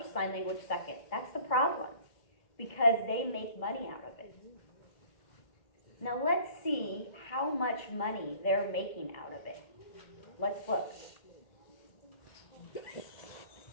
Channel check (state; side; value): late; right; 2.1 ms